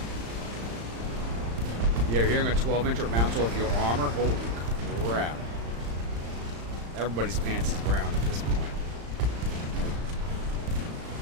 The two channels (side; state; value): left; late; 35 ms